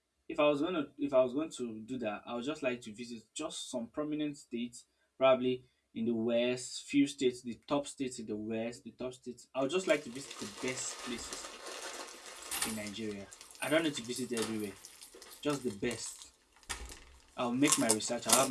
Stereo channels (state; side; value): identical; both; correlation 1.00